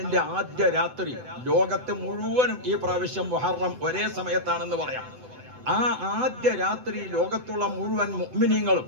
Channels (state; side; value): late; left; 8.0 ms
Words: ആദ്യ രാത്രി ലോകത്ത് മുഴുവനും ഈ പ്രാവശ്യം മുഹറം ഒരേ സമയത്താണെന്ന് പറയാം. ആ ആദ്യ രാത്രി ലോകത്തുള്ള മുഴുവൻ മുഅ്മിനീങ്ങളും